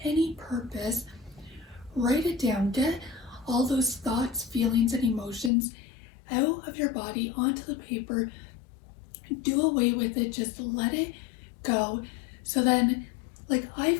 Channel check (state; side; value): drops out; right; at 5.5 s